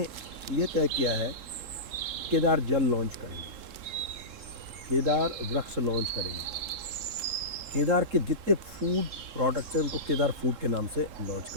ये तय किया है केदार जल लॉन्च करेंगे, केदार वृक्ष लॉन्च करेंगे, केदार के जितने फूड प्रोडक्ट्स हैं उनको केदार फूड के नाम से लॉन्च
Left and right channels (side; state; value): left; late; 3.7 ms